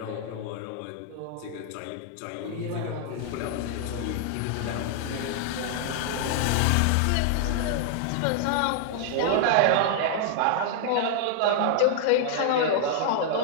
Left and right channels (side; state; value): both; different; correlation -0.01